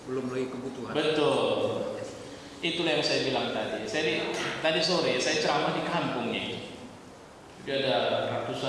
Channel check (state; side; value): identical; both; correlation 1.00